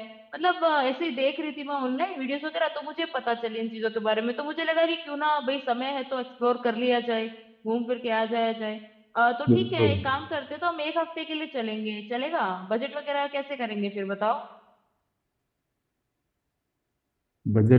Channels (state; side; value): identical; both; correlation 1.00